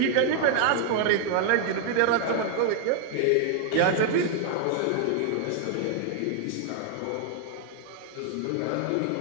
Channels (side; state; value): both; different; correlation 0.00